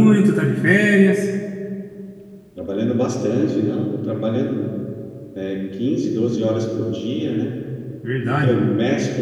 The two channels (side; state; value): both; identical; correlation 1.00